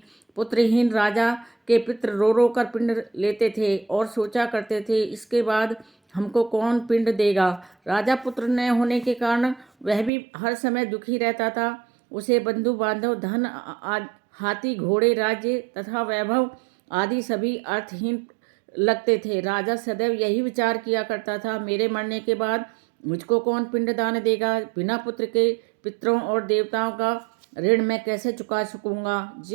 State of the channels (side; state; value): left; drops out; at 10.1 s